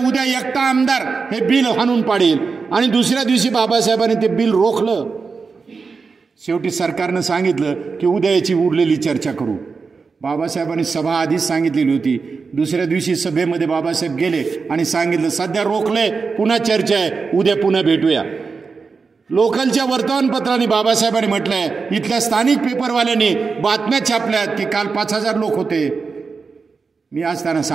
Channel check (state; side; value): quieter; left; 4.8 dB